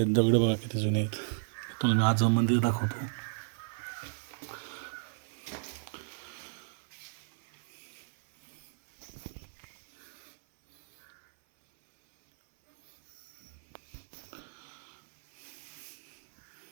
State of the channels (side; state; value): left; silent; 55 dB below the other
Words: दगड बघा किती जुने आहेत. तुम्हाला मी आज मंदिर दाखवतो.